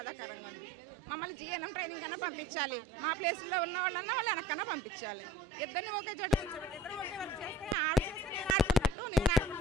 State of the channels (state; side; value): normal; both; correlation 0.46